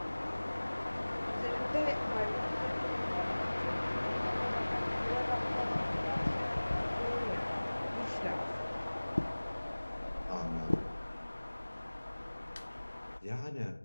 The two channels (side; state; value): both; inverted; correlation -1.00